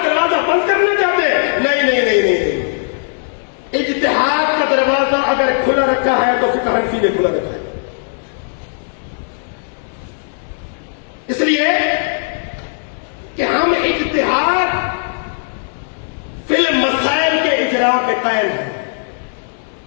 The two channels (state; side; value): silent; right; digital silence